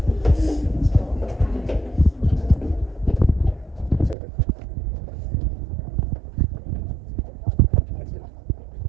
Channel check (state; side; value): drops out; left; at 4.2 s